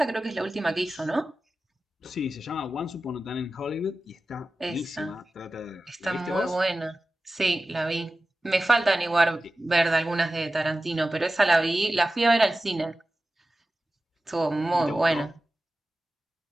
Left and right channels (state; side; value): normal; both; correlation 0.95